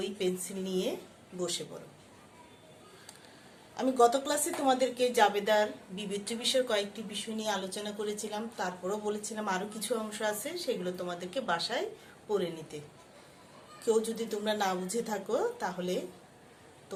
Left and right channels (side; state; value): both; identical; correlation 1.00